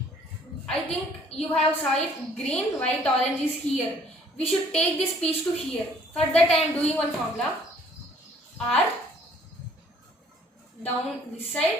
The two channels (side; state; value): both; normal; correlation 0.59